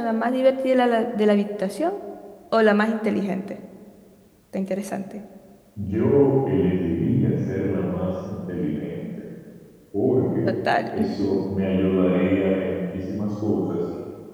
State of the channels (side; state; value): both; identical; correlation 1.00